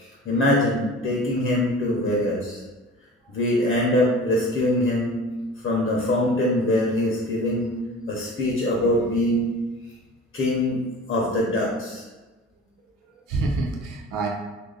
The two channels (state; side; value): normal; both; correlation 0.40